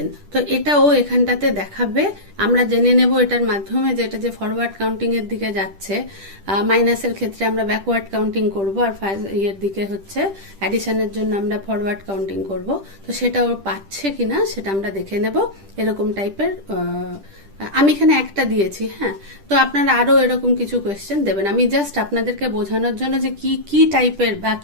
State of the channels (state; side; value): late; left; 10 ms